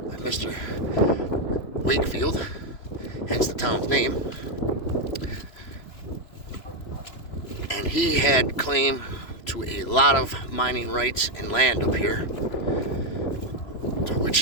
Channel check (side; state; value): right; late; 3.0 ms